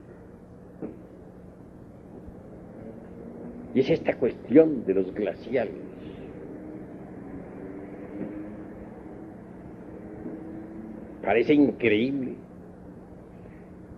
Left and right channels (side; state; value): both; identical; correlation 1.00